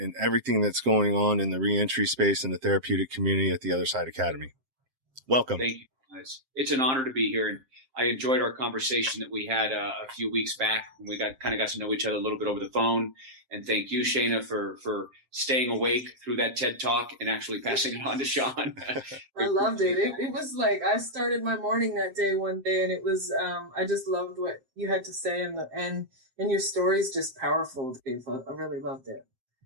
everything that's going on in the reentry space and the therapeutic community at the Other Side Academy. Welcome. Thank you. It's an honor to be here, and I enjoyed our conversation that we had a few weeks back when we got to know each other a little bit over the phone. And thank you, Shaina, for staying awake through that TED Talk and actually passing it on to Sean. I loved it. It was like I started my morning that day one day, and it was I just loved what you had to say, and your story's just powerful, Dave. I really loved it.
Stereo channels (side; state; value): left; late; 7.6 ms